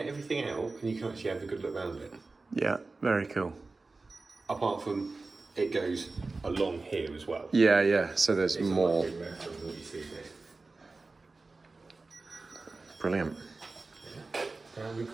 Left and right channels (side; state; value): left; quieter; 3.6 dB